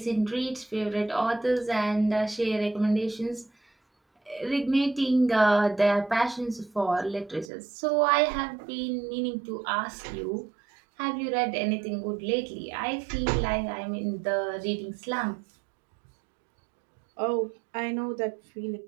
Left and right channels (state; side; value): drops out; left; at 7.5 s